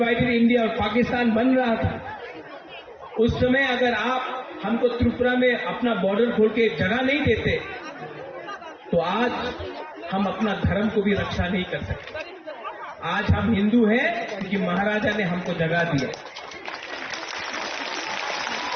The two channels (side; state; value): both; identical; correlation 1.00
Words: इंडिया और पाकिस्तान बन रहा था, उस समय अगर आप हमको त्रिपुरा में अपना बॉर्डर खोल के जगह नहीं देते, तो आज हम अपना धर्म को भी रक्षा नहीं कर सकते। आज हम हिंदू हैं क्योंकि महाराजा ने हमको जगह दिया।